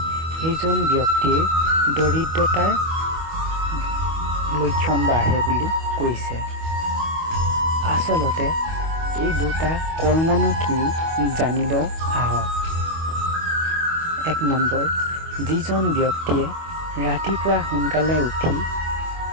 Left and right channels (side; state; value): left; late; 25 ms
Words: সেইজন ব্যক্তিৰ দৰিদ্ৰতাৰ লক্ষণ বাঢ়ে বুলি কৈছে। আচলতে এই দুটা কৰ্মনো কি জানিব আহক। 1 নম্বৰ, যিজন ব্যক্তিয়ে ৰাতিপুৱা সোনকালে উঠি